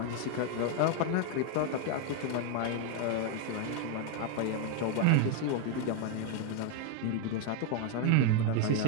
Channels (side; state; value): both; different; correlation 0.01